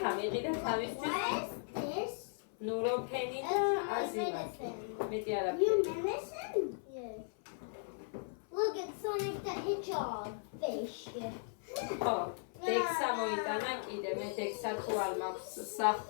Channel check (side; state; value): right; silent; 53 dB below the other